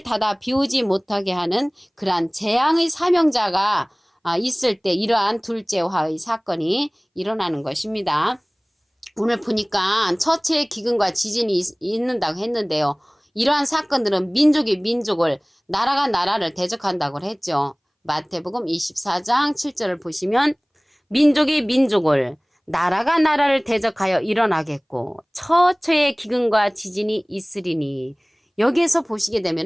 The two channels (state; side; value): identical; both; correlation 1.00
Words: 닫아 비오지 못하게 하는 그러한 재앙의 사명자가 있을 때 이러한 둘째 화의 사건이 일어나는 것입니다. 오늘 보니까 처처의 기근과 지진이 있는다고 했는데요. 이러한 사건들은 민족이 민족을, 나라가 나라를 대적한다고 했죠. 마태복음 24장 7절을 보시면 민족이 민족을, 나라가 나라를 대적하여 일어나겠고 처처의 기근과 지진이 있으리니, 여기에서 보시게